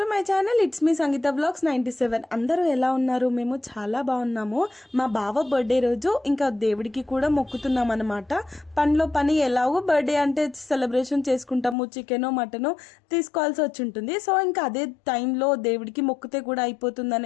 my channel. It's me Sangeetha blogs 97. అందరూ ఎలా ఉన్నారు? మేము చాలా బాగున్నాము. మా బావ బర్త్డే రోజు ఇంకా దేవుడికి కూడా మొక్కుతున్నాం అనమాట. పనిలో పని ఎలాగో బర్త్డే అంటే సెలబ్రేషన్ చేసుకుంటాము, చికెనో మటనో తీసుకోవాల్సి వచ్చి ఉంటుంది. సో ఇంకా అదే టైంలో దేవుడికి మొక్కుతే కూడా అయిపోతుంది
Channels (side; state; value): right; drops out; at 11.8 s